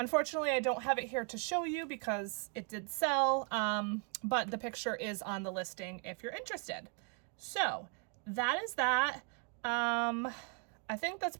I don't have it here to show you because it did sell, but the picture is on the listing if you're interested. So that is that. I think that's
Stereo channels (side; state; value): left; quieter; 32.0 dB